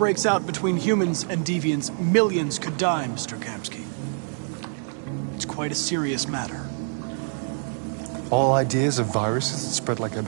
out between humans and deviants, millions could die, Mr. Kamsky. It's quite a serious matter. All ideas of viruses that spread like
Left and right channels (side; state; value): left; silent; 61 dB below the other